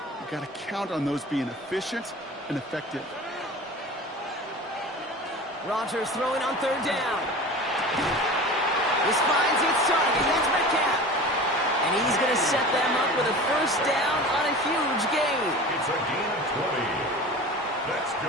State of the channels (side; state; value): both; normal; correlation 0.36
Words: you've got to count on those being efficient and effective. Rodgers throwing on third down. This finds its target. That's Metcalf. And he's going to set them up with a first down on a huge gain. It's a gain of 20. That's